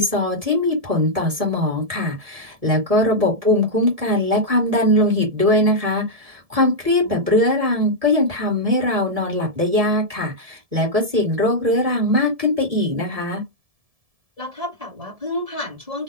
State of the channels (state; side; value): late; left; 1.7 ms